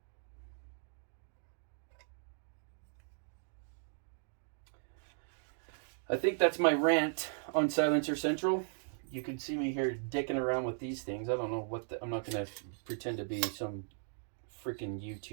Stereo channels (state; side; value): silent; left; digital silence